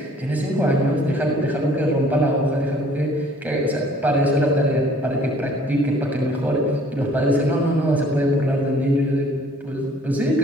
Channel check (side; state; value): both; normal; correlation 0.56